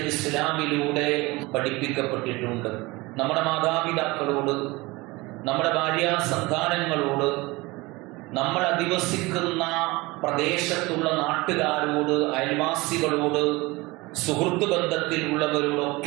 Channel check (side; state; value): left; quieter; 22.7 dB